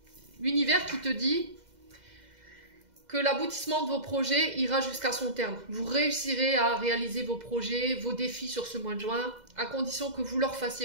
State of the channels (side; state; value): left; late; 2.0 ms